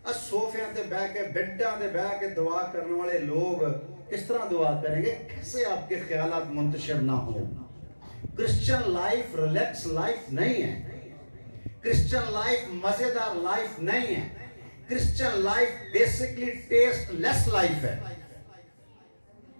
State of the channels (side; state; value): both; inverted; correlation -1.00